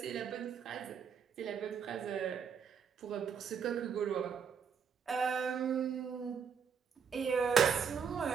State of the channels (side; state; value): left; quieter; 6.6 dB